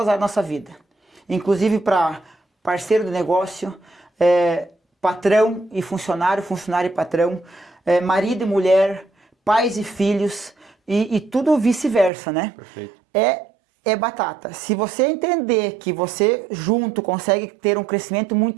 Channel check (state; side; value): drops out; left; at 12.1 s